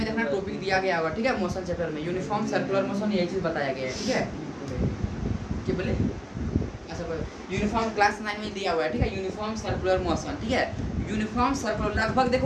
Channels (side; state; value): both; identical; correlation 1.00